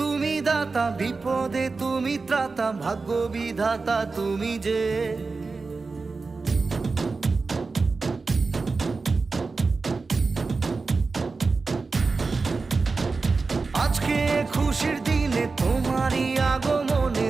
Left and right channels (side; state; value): left; quieter; 4.1 dB